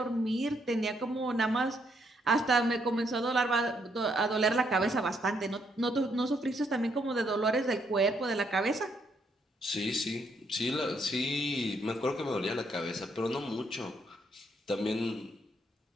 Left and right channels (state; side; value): normal; both; correlation 0.73